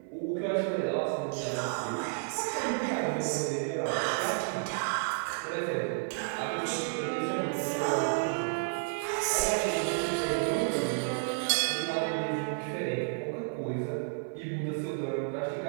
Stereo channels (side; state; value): left; silent; 57 dB below the other